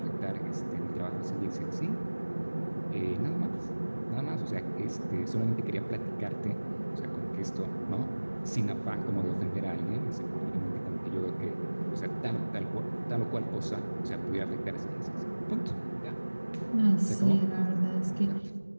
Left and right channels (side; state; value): both; inverted; correlation -1.00